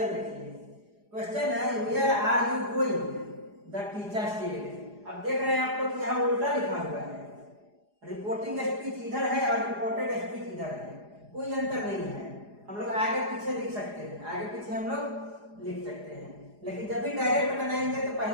देखिए। क्वेश्चन है, where are you going, the teacher said. अब देख रहे हैं आप लोग यहाँ उल्टा लिखा हुआ है। रिपोर्टिंग स्पीच इधर है और रिपोर्टेड स्पीच इधर है, कोई अंतर नहीं है। हम लोग आगे पीछे लिख सकते हैं, आगे पीछे हम लोग लिख सकते हैं। लेकिन जब भी डायरेक्ट बनाएंगे तो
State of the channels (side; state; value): left; late; 4.9 ms